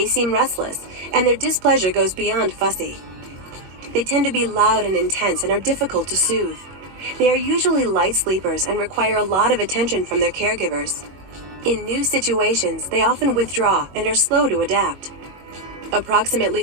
seem restless, and their displeasure goes beyond fussy. They tend to be loud and intense and are difficult to soothe. They are usually light sleepers and require a lot of attention from their caregivers. In new situations, they often withdraw and are slow to adapt.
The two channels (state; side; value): late; left; 21 ms